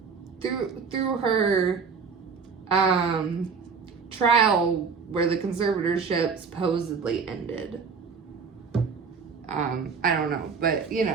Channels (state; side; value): quieter; left; 5.6 dB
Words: through her trial where the conservatorship supposedly ended. I don't know, but